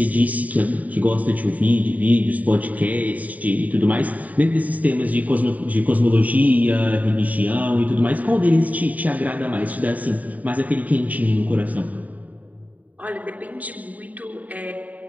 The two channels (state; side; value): late; left; 0.073 ms